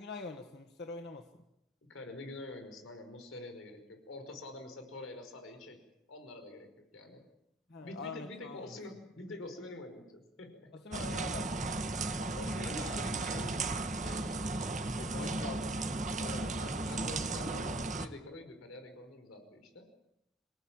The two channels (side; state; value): both; normal; correlation 0.52